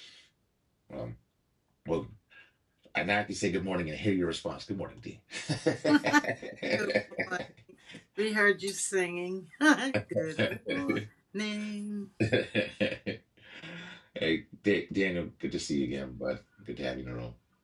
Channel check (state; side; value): identical; both; correlation 1.00